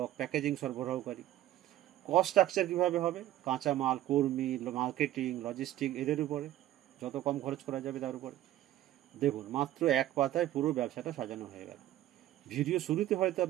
প্যাকেজিং সরবরাহকারী। কস্ট স্ট্রাকচার কীভাবে হবে? কাঁচামাল, কর্মী, মার্কেটিং, লজিস্টিক, এদের উপরে যত কম খরচ করা যাবে তার উপরে। দেখুন, মাত্র এক পাতায় পুরো ব্যবসাটা সাজানো হয়ে গেল। ভিডিও শুরুতে হয়তো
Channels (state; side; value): quieter; left; 13.7 dB